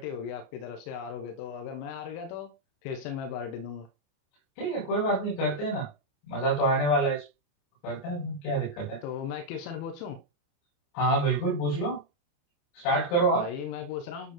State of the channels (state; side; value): late; right; 29 ms